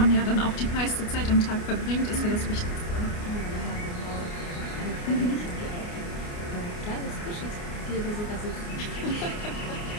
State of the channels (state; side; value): late; right; 29 ms